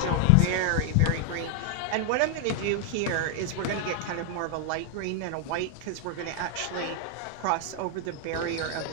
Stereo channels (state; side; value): different; both; correlation 0.00